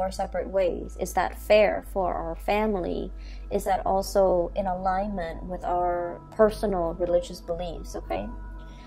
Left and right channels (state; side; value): identical; both; correlation 1.00